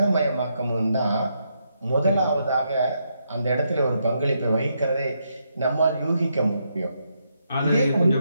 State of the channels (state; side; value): inverted; both; correlation -0.79